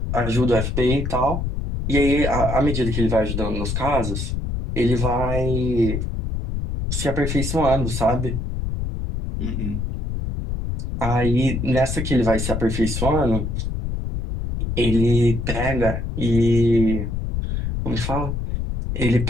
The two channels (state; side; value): noise; left; rumble, 3 dB below the sound